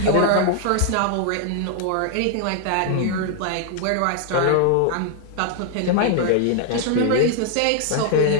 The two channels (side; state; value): both; different; correlation 0.00